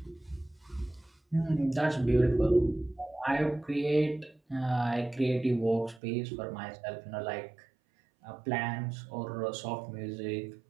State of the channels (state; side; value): drops out; left; at 6.0 s